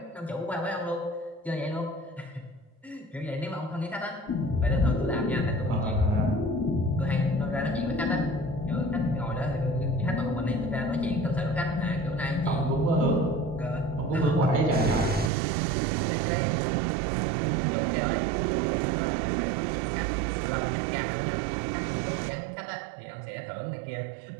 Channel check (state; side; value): drops out; left; at 15.3 s